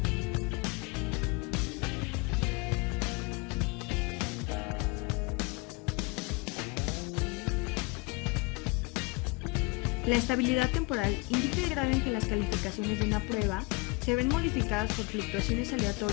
La estabilidad temporal indica el grado en que las calificaciones de una prueba se ven modificadas por fluctuaciones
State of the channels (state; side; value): quieter; right; 27.1 dB